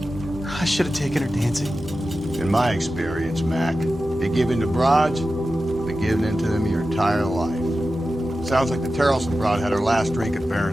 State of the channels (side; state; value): both; normal; correlation 0.93